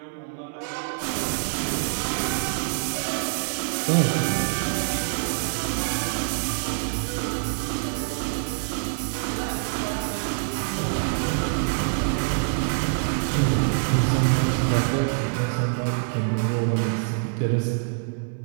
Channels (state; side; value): silent; left; 61 dB below the other